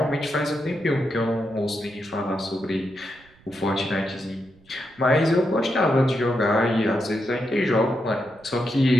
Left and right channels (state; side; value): noise; right; rumble, 28 dB below the sound